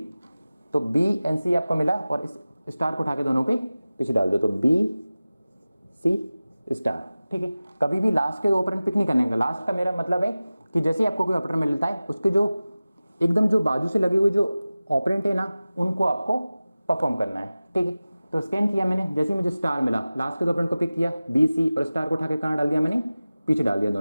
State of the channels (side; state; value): both; inverted; correlation -0.97